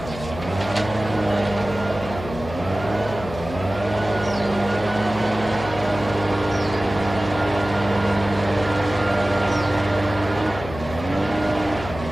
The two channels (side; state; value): left; noise; hum, 11 dB below the sound